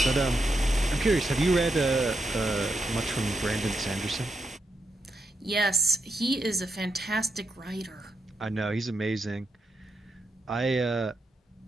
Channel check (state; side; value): normal; both; correlation 0.83